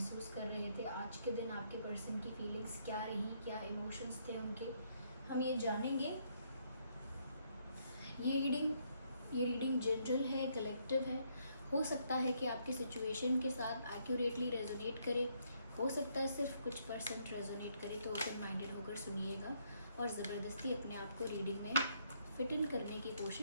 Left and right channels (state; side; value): inverted; both; correlation -0.72